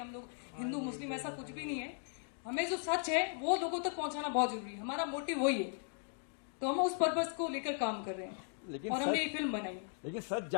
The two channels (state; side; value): silent; right; 53 dB below the other